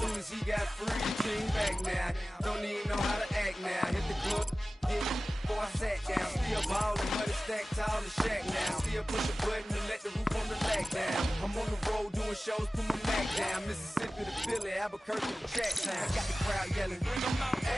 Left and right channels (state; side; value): normal; both; correlation 0.96